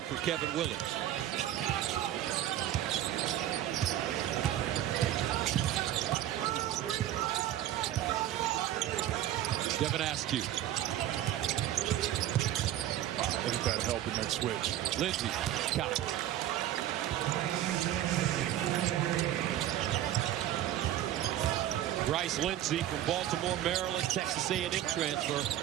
for Kevin Willard. Devin Askew. Look at that help in that switch. Lindsay, got it. Bryce Lindsey from Baltimore, Maryland, Texas A&M transfer,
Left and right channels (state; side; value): quieter; left; 12.5 dB